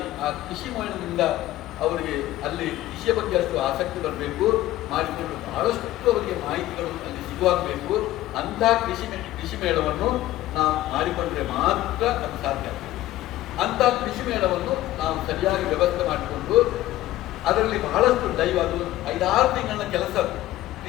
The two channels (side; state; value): right; quieter; 15.3 dB